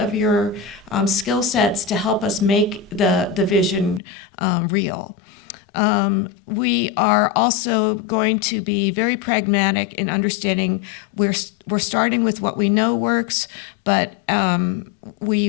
your skill sets to help us make the vision real. We are also going to be very pragmatic in understanding we're starting with what we know works, but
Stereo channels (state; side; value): drops out; right; at 4.0 s